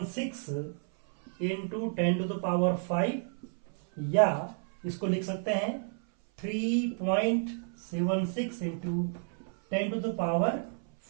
इंटू 10⁵, या इसको लिख सकते हैं 3.76 इंटू 10⁴,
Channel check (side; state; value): left; silent; 57 dB below the other